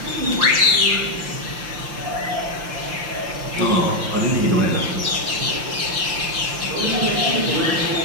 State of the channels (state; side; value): late; left; 5.8 ms